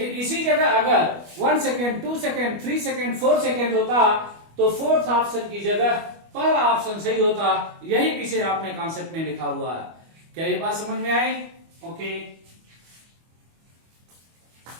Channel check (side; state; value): left; late; 25 ms